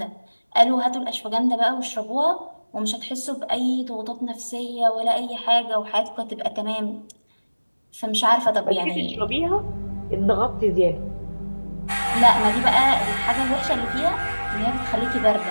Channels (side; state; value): both; inverted; correlation -1.00